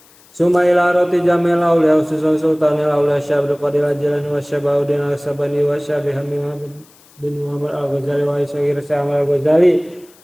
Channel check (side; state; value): left; noise; hiss, 28 dB below the sound